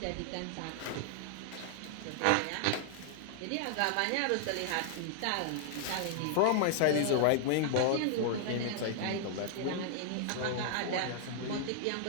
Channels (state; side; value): different; both; correlation 0.00